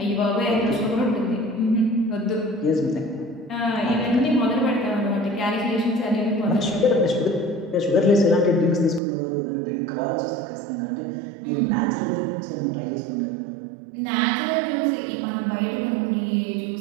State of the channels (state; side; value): drops out; left; at 9.0 s